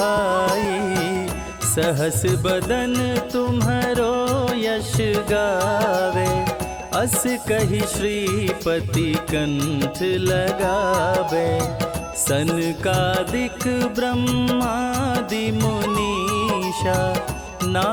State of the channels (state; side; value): identical; both; correlation 1.00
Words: सहस बदन तुम्हरो यश गावे, अस कही श्रीपति कंठ लगावे। सनकादिक ब्रह्मादि मुनीषा,